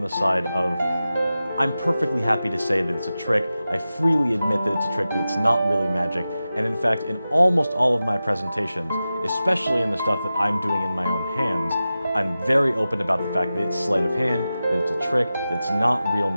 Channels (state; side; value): inverted; both; correlation -0.94